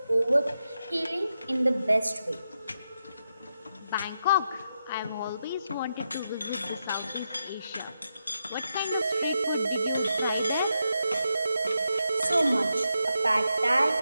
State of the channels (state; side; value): inverted; both; correlation -0.85